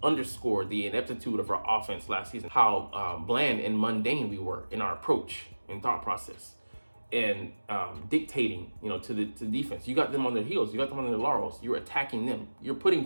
underscored the ineptitude of our offense last season, how bland and mundane we were in our approach and thought process, and dictating, to the defense. You got them on their heels. You got them on their laurels. You're attacking them. You're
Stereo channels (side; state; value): both; inverted; correlation -1.00